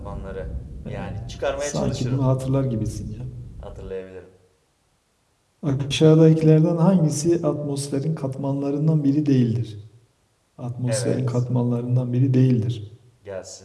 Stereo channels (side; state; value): both; identical; correlation 1.00